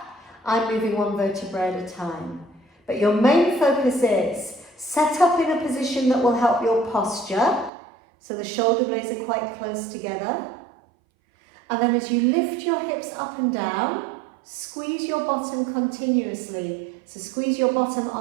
I'm moving one vertebrae at a time. But your main focus is set up in a position that will help your posture, so the shoulder blades are quite close together. And then as you lift your hips up and down, squeeze your bottom continuously. So squeeze your bottom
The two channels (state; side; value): drops out; left; at 7.7 s